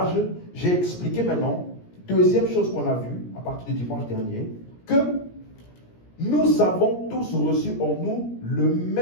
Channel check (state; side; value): late; right; 17 ms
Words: j'ai expliqué maintenant, deuxième chose qu'on a vue à partir du dimanche dernier, que nous avons tous reçu en nous le